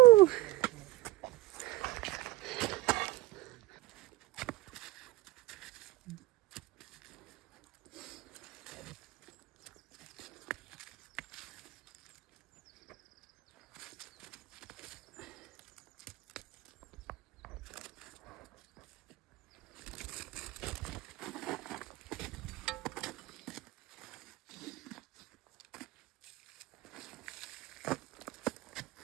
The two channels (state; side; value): quieter; left; 17.4 dB